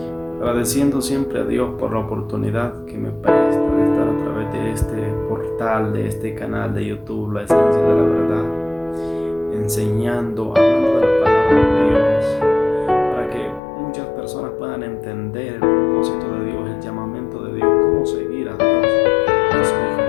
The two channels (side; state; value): right; drops out; at 13.6 s